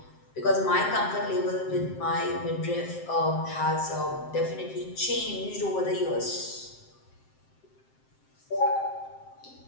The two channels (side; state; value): right; late; 7.6 ms